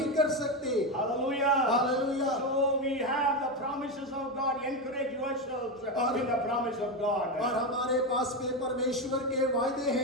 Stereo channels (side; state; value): both; normal; correlation 0.13